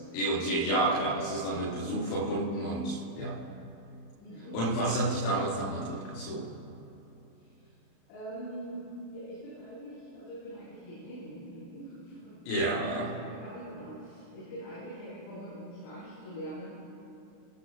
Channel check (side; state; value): right; late; 35 ms